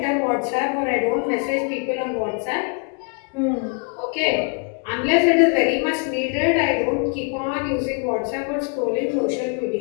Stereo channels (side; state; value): right; quieter; 39.1 dB